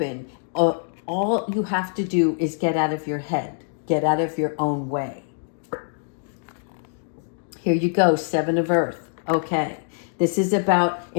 All you have to do is get out of your head. Get out of your own way. Here you go, 7 of Earth. Okay. This is about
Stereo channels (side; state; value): right; silent; digital silence